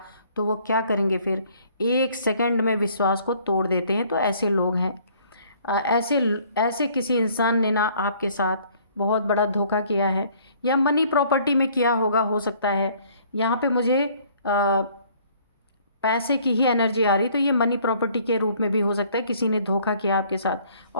तो वो क्या करेंगे, फिर 1 सेकंड में विश्वास को तोड़ देते हैं। तो ऐसे लोग हैं। ऐसे ऐसे किसी इंसान ने ना आपके साथ बहुत बड़ा धोखा किया है, या मनी प्रॉपर्टी में किया होगा, हो सकता है। यहाँ पे मुझे पैसे की ही एनर्जी आ रही, तो ये मनी प्रॉपर्टी के रूप में भी हो सकता है। किसी ने धोखा किया आपके साथ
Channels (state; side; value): inverted; both; correlation -0.59